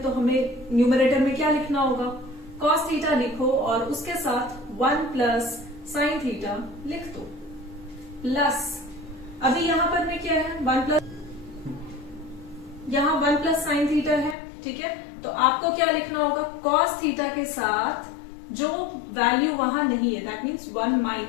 तो हमें न्यूमरेटर में क्या लिखना होगा, कॉस थीटा लिखो और उसके साथ 1 प्लस साइन थीटा लिख दो, प्लस अभी यहां पर में क्या है, 1 प्लस, यहां 1 प्लस साइन थीटा है। ठीक है, तो आपको क्या लिखना होगा, कॉस थीटा के साथ जो वैल्यू वहां नहीं है, that means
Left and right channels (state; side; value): drops out; right; at 14.4 s